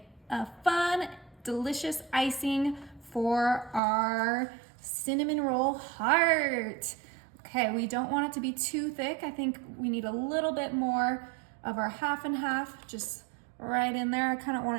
a fun, delicious icing for our cinnamon roll heart. Okay, we don't want it to be too thick. I think we need a little bit more of our half and half, just right in there. I kind of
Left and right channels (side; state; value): left; drops out; at 3.8 s